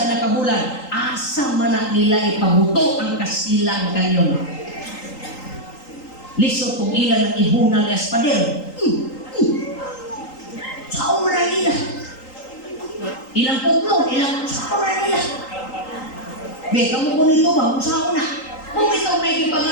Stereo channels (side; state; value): right; late; 3.8 ms